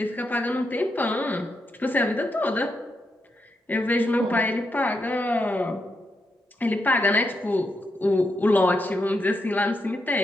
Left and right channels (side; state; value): both; normal; correlation 0.83